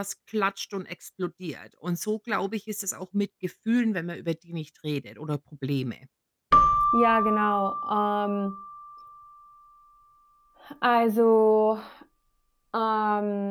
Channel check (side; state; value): both; identical; correlation 1.00